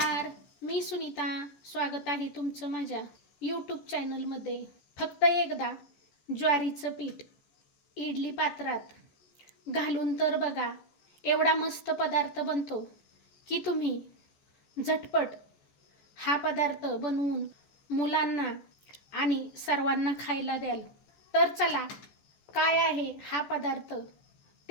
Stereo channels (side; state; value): right; late; 14 ms